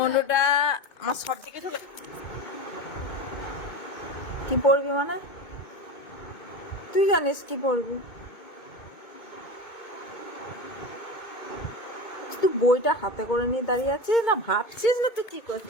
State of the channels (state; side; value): late; right; 2.2 ms